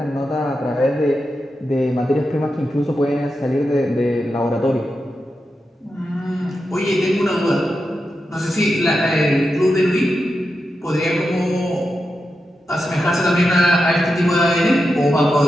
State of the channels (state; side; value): normal; both; correlation 0.88